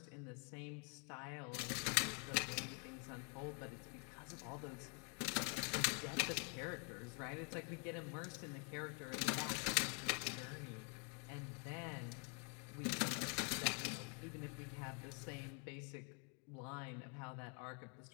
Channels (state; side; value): quieter; right; 37.8 dB